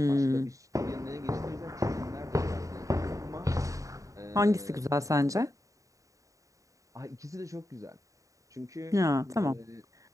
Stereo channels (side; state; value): left; late; 0.16 ms